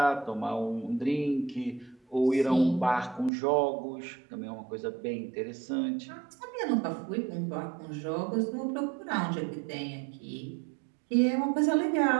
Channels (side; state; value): left; drops out; at 3.3 s